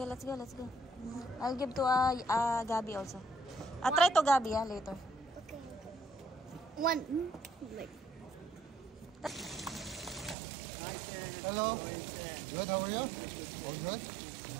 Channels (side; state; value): left; drops out; at 10.4 s